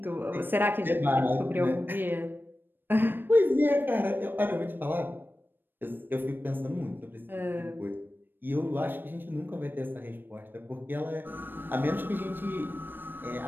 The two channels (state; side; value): late; left; 0.095 ms